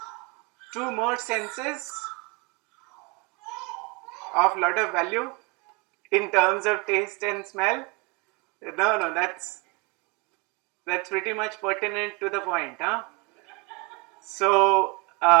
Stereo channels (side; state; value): left; quieter; 29.4 dB